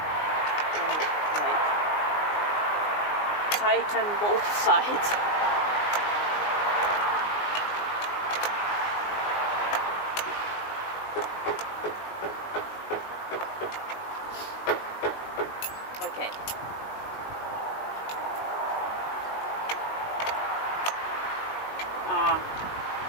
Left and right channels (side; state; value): right; late; 19 ms